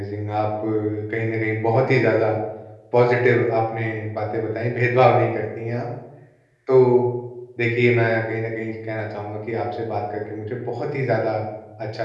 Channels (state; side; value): identical; both; correlation 1.00